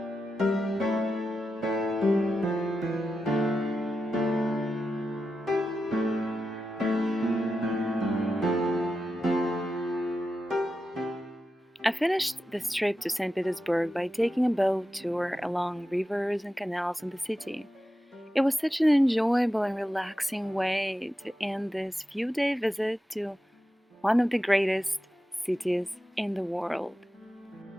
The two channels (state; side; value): normal; both; correlation 0.90